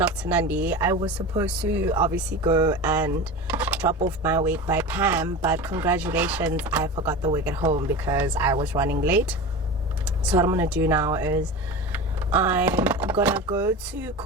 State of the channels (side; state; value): both; normal; correlation 0.29